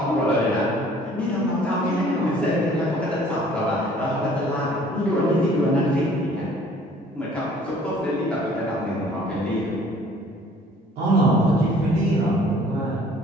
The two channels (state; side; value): normal; both; correlation 0.55